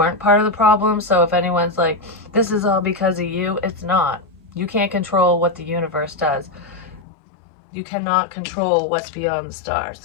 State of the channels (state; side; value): drops out; right; at 7.1 s